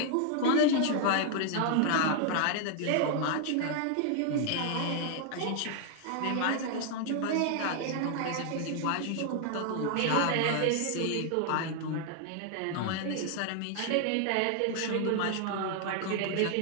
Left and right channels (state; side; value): different; both; correlation 0.00